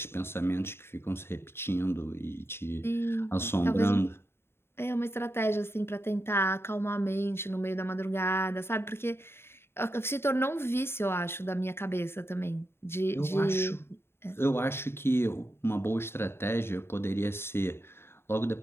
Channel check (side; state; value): right; late; 0.12 ms